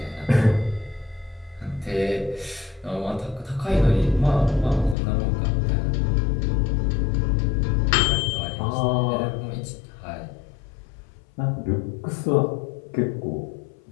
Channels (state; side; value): drops out; right; at 5.0 s